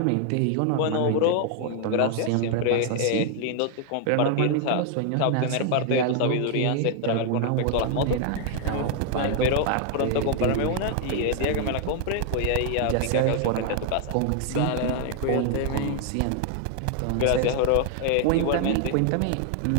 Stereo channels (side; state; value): both; different; correlation 0.00